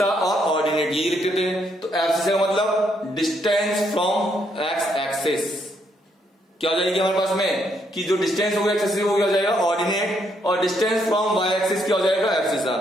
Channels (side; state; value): both; normal; correlation 0.74